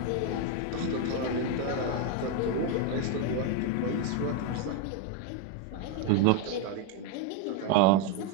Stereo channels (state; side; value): different; both; correlation 0.02